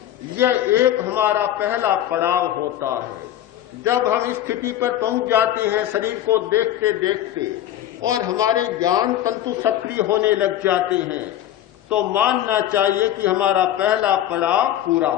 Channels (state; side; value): quieter; right; 12.2 dB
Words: यह एक हमारा पहला पड़ाव होता है। जब हम इस स्थिति पर पहुंच जाते हैं शरीर को देखते देखते और हमारे ज्ञान तंतु सक्रिय होने लग जाते हैं, तो मानना चाहिए कि हमारा पहला पड़ाव पूरा